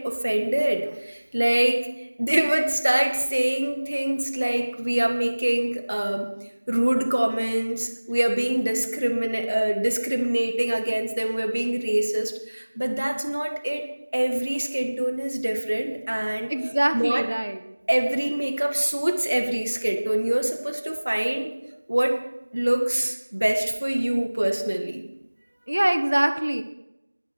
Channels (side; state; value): both; inverted; correlation -1.00